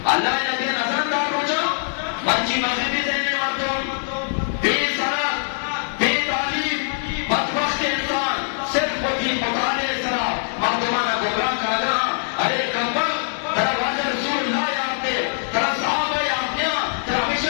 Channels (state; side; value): silent; right; 63 dB below the other